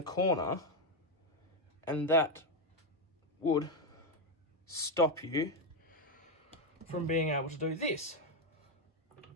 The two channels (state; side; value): normal; both; correlation 0.06